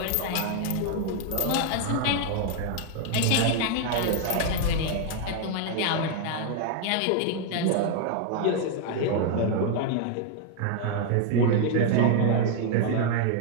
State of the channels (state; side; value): different; both; correlation 0.00